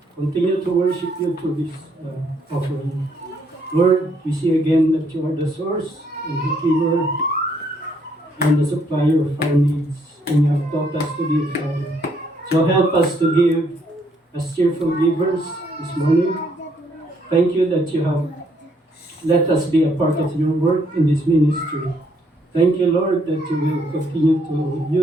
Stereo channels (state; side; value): normal; both; correlation 0.70